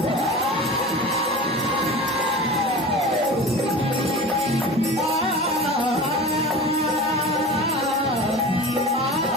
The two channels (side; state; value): both; normal; correlation 0.34